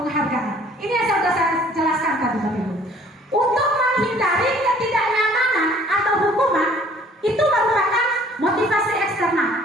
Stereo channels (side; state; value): both; normal; correlation 0.56